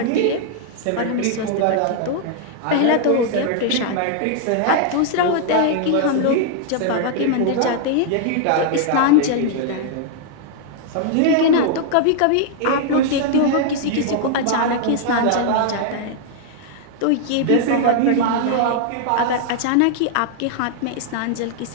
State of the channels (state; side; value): different; both; correlation 0.00